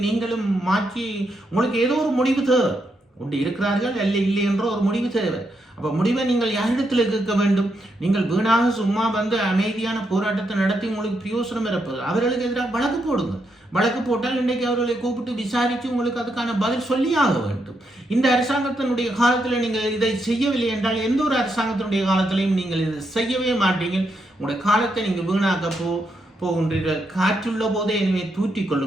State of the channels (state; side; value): normal; both; correlation 0.80